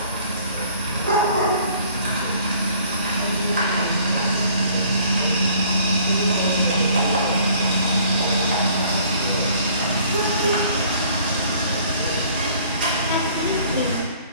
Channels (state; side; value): inverted; both; correlation -0.56